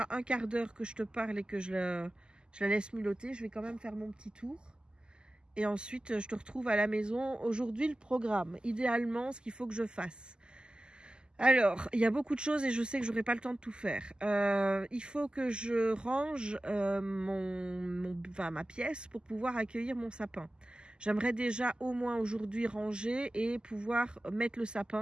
un quart d'heure que je te parle et que je la laisse miloter. Je vais quand même faire mon petit tour. Et ensuite, je te retrouve à la maison. Aujourd'hui, le programme. Idéalement, ce qu'il faut que je fasse. Alors, il y a beaucoup de choses et je sais que je n'aurai pas le temps de tout faire. Il faut que je range ma pièce pour pouvoir accueillir mon sapin. J'aimerais déjà au moins aujourd'hui ranger et pouvoir mettre le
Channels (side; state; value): left; late; 0.047 ms